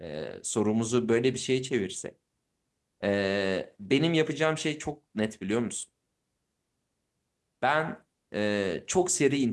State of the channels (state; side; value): identical; both; correlation 1.00